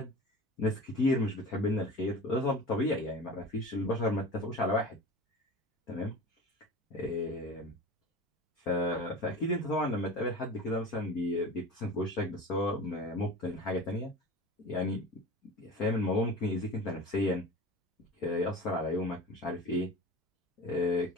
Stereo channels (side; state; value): both; normal; correlation 0.34